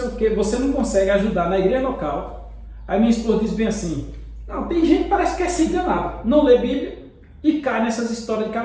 o que. Você não consegue ajudar na igreja local. Aí minha esposa diz bem assim, não, tem gente que parece que é se enganado. Não lê Bíblia e cai nessas histórias de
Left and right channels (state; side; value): identical; both; correlation 1.00